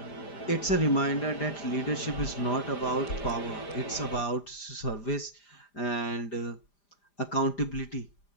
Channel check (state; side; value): late; right; 5.0 ms